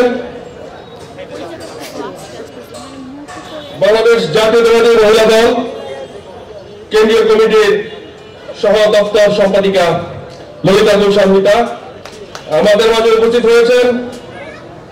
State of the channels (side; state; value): both; identical; correlation 1.00